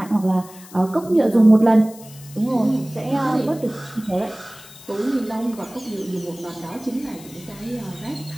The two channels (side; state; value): left; noise; hiss, 20 dB below the sound